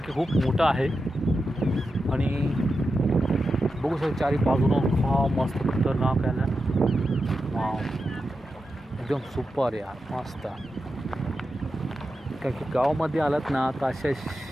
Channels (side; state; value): both; normal; correlation 0.89